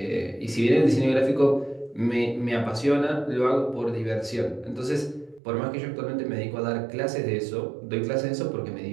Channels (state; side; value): drops out; left; at 5.4 s